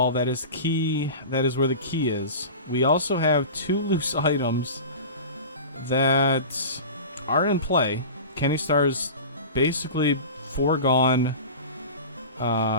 That is key. That is where the key is. We also have 2 loose items that are in play. Kennystarr's basically foregone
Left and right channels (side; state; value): both; inverted; correlation -0.32